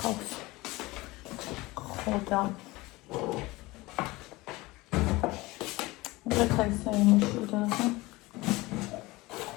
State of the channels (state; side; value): quieter; right; 21.0 dB